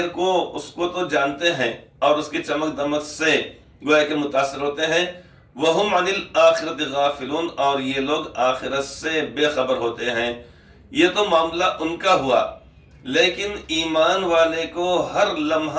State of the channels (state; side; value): identical; both; correlation 1.00